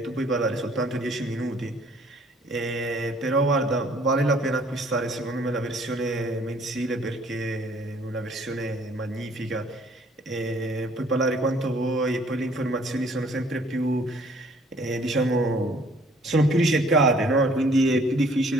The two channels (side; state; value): both; normal; correlation 0.59